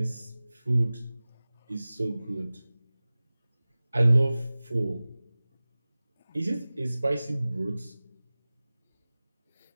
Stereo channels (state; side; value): inverted; both; correlation -0.98